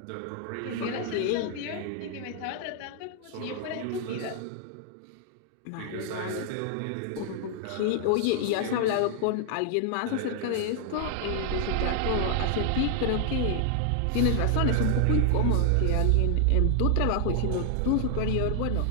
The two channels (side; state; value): both; different; correlation 0.00